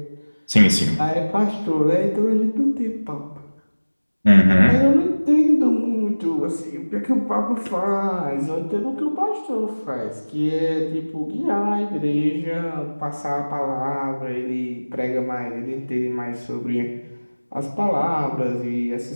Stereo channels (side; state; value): both; inverted; correlation -1.00